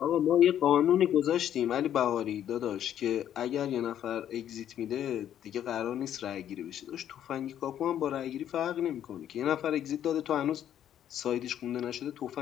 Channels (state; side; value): quieter; right; 10.5 dB